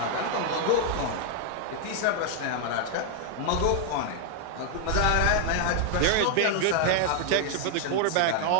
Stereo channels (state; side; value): different; both; correlation 0.00